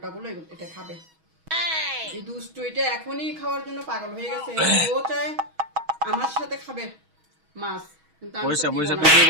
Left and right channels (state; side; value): late; left; 6.3 ms